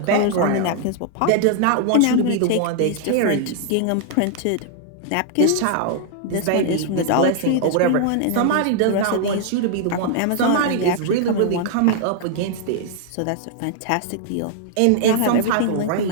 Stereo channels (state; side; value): different; both; correlation -0.01